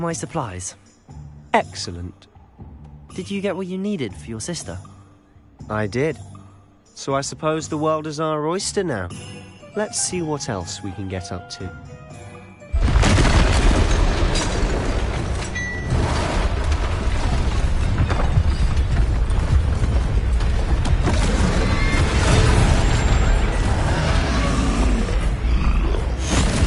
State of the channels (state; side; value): identical; both; correlation 1.00